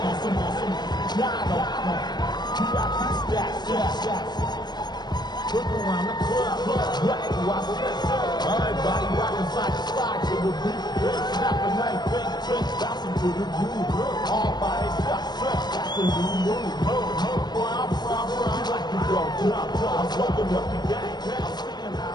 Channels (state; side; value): late; right; 0.20 ms